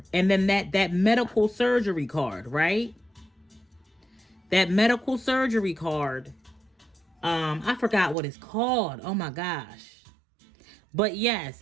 and then that medical surgery card, right? That medical surgery card, I forgot what it's called. Oh my gosh. But yes,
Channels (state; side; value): drops out; left; at 8.2 s